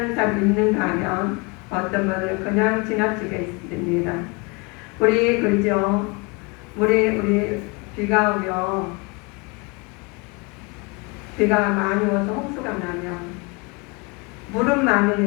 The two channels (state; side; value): quieter; right; 28.5 dB